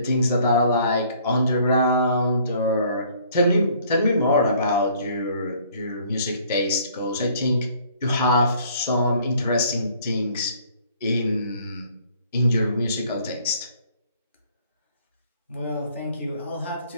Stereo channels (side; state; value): both; inverted; correlation -0.59